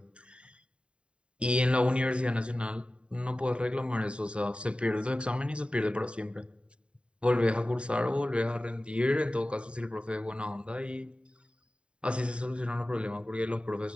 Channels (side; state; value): left; late; 0.056 ms